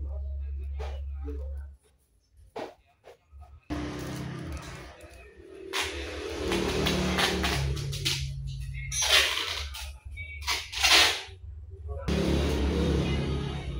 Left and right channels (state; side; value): identical; both; correlation 1.00